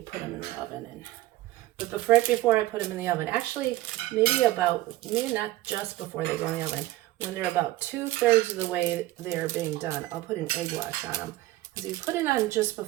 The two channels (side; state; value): left; quieter; 17.0 dB